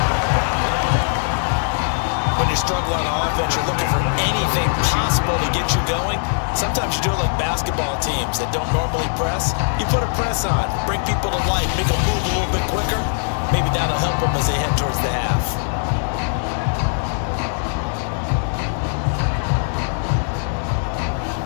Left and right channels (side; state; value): right; silent; digital silence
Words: When you're struggling on offense, you're looking for anything possible to get you going. Sometimes you do it like basketball teams that don't normally press. You put a press on, bring people to life, make them move a little bit quicker. Maybe that'll help them as they head towards the half.